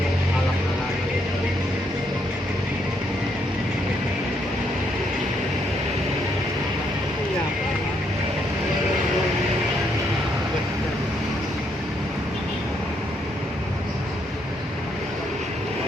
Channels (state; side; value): normal; both; correlation 0.74